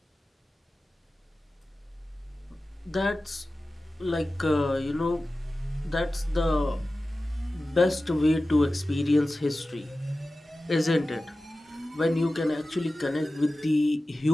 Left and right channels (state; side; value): normal; both; correlation 0.95